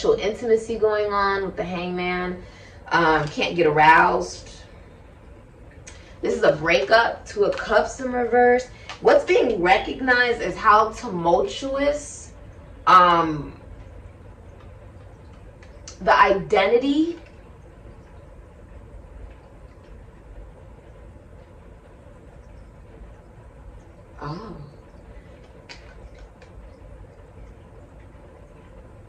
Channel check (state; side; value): identical; both; correlation 1.00